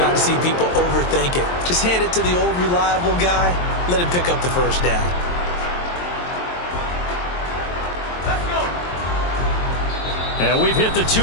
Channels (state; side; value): late; right; 23 ms